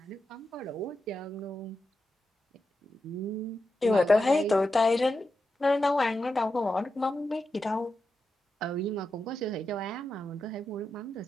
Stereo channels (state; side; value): normal; both; correlation 0.88